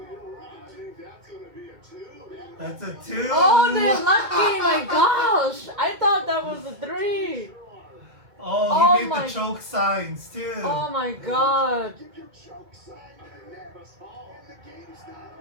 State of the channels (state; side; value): late; left; 2.1 ms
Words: That's a 2. Oh, they're lucky. My gosh. I thought that was a 3. Oh, Oh he made my- the choke signs too. Oh my god.